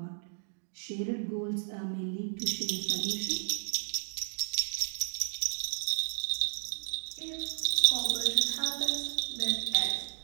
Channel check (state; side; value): silent; left; digital silence